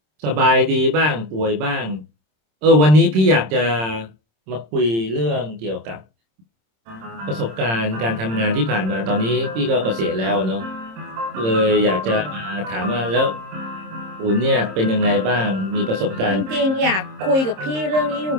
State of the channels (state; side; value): late; left; 26 ms